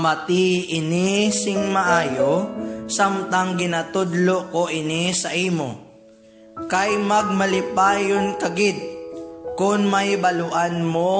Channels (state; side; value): identical; both; correlation 1.00